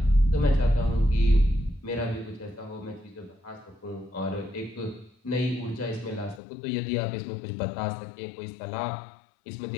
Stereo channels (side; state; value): right; drops out; at 6.4 s